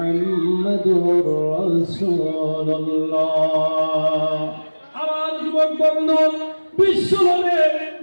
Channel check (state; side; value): inverted; both; correlation -1.00